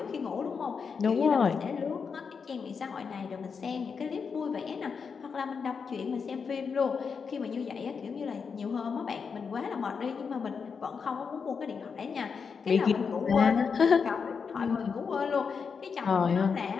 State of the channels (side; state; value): right; quieter; 5.8 dB